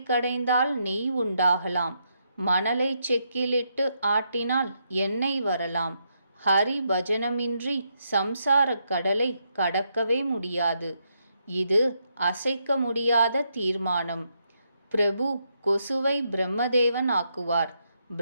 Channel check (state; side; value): inverted; both; correlation -0.79